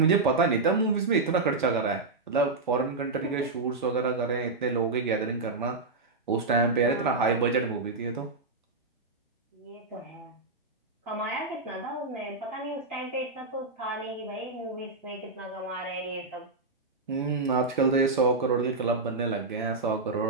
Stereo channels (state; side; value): quieter; left; 3.6 dB